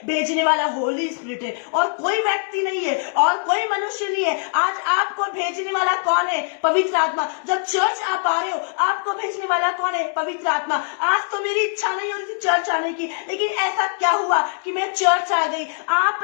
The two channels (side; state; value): right; silent; 64 dB below the other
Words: भेजने वाला होली स्पिरिट है, और कोई व्यक्ति नहीं है, और कोई मनुष्य नहीं है। आज आपको भेजने वाला कौन है? पवित्र आत्मा। जब चर्च आप आ रहे हो, आपको भेजने वाला कौन है? पवित्र आत्मा। आज तो मेरी इच्छा नहीं हो रही थी चर्च आने की, लेकिन ऐसा क्या हुआ कि मैं चर्च आ गई। आप